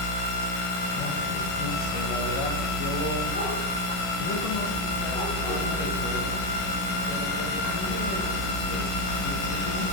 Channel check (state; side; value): late; right; 11 ms